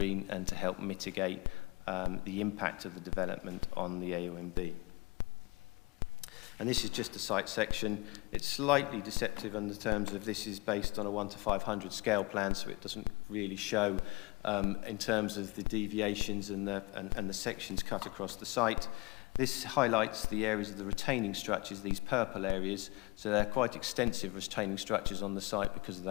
and to help mitigate the impact of the development on the AONB. And this is just a site section. It's slightly deceptive in the terms of this is based on a 1 to 500 scale plan, so it doesn't really show in terms of the deviations and the sections cut across the site. This highlights the areas of the retaining structures, these purple areas, so they're quite extensive retaining structures on the site because of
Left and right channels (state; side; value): quieter; right; 24.0 dB